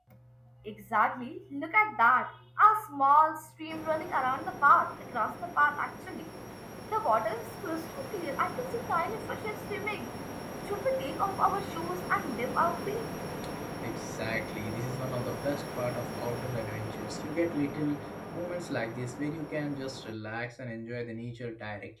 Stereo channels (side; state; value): both; identical; correlation 1.00